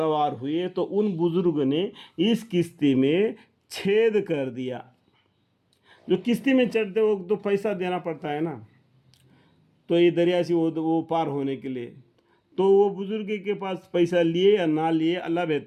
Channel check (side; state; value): both; identical; correlation 1.00